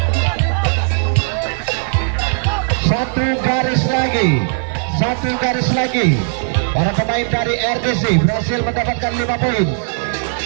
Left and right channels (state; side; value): silent; left; 61 dB below the other